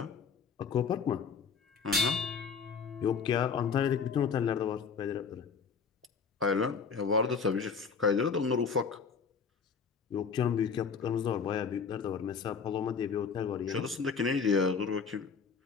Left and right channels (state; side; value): quieter; right; 5.8 dB